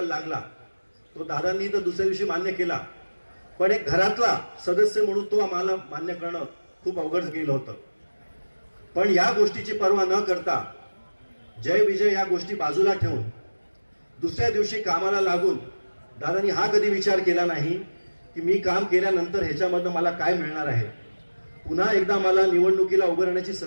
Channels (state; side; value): inverted; both; correlation -1.00